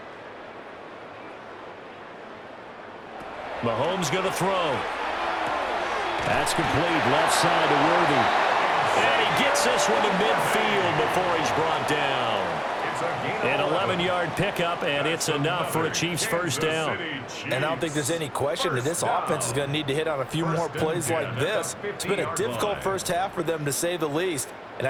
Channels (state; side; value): identical; both; correlation 1.00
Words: Mahomes going to throw. That's complete. Left side to Worthy. And he gets this one to midfield before he's brought down. An 11-yard pickup, and it's enough for a Chiefs first down. And I don't think there's any question that this offense is going to need to hit on a few more plays like this. It's been a difficult first half for them, to say the least. And